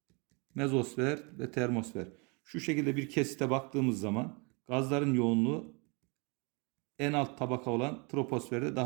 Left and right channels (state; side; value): quieter; left; 31.4 dB